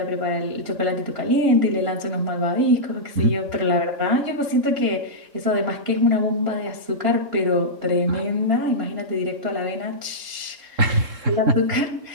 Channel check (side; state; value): left; late; 3.7 ms